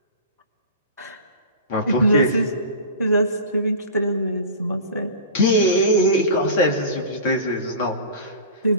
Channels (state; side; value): inverted; both; correlation -0.35